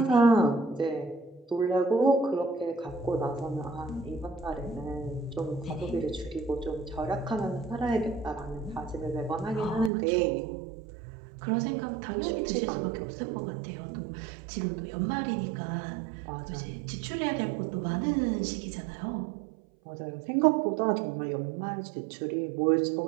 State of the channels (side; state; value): left; drops out; at 9.9 s